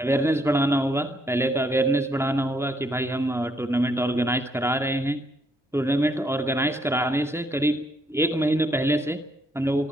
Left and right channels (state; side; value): normal; both; correlation 0.72